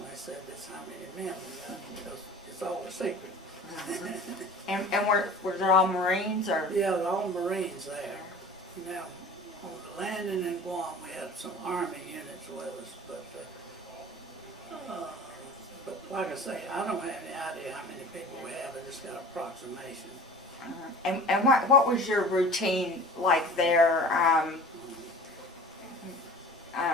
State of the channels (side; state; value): both; normal; correlation 0.41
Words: said that's how many men we got, because it's all a secret. And were there all Marines or? Yeah, they're all Marines there. Now, on the landing in Guam, we had some Army units with us, but like I say, I don't have any idea how many people we have. I just got an approximation. And what was your routine like there?